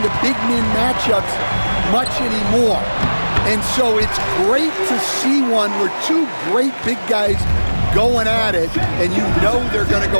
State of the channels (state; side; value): inverted; both; correlation -1.00